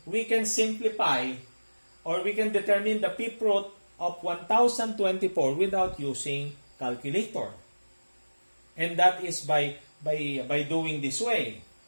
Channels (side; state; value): both; inverted; correlation -1.00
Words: we can simplify or we can determine the fifth root of 1024 without using calculator. And that is by doing this way.